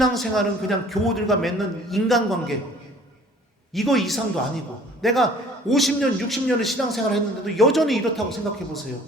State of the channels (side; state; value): both; normal; correlation 0.52